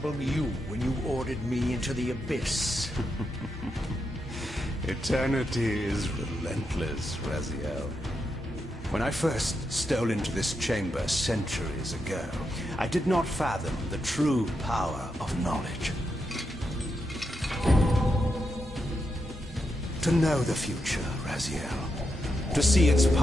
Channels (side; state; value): both; normal; correlation 0.85